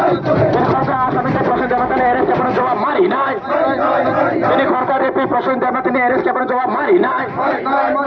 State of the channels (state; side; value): identical; both; correlation 1.00